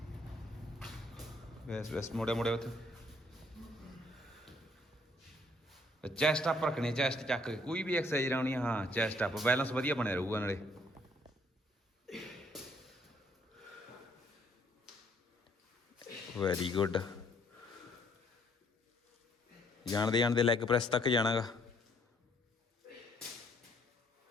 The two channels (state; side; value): normal; both; correlation 0.66